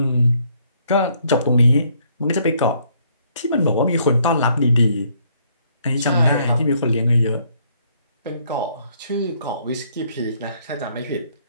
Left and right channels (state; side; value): inverted; both; correlation -0.67